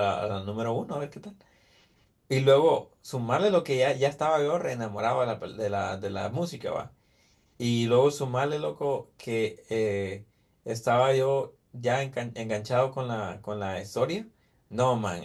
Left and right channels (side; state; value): both; identical; correlation 1.00